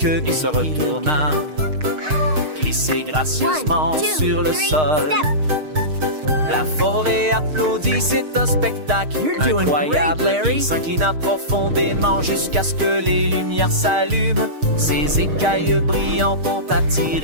et se retourna, glissait gracieusement sur le sol. La forêt applaudit, c'est un spectacle incroyable. Il s'inclina profondément jusqu'à ce que les lumières s'allument. Ses écailles brillantes ont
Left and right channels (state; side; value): late; left; 6.5 ms